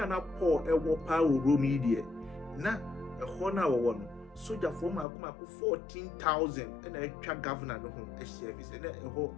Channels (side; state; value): right; drops out; at 5.1 s